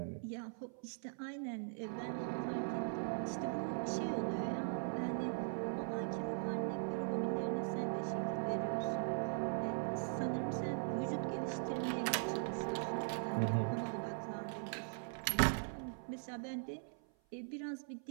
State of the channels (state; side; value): silent; left; 51 dB below the other